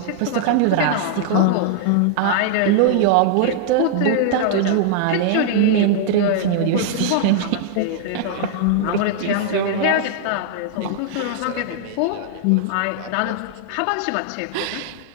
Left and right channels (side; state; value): both; different; correlation -0.01